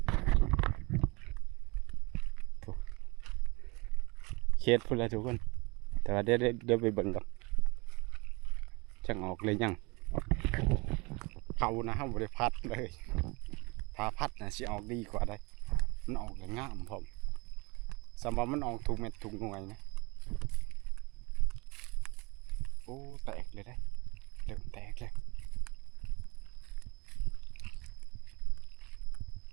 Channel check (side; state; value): left; quieter; 27.3 dB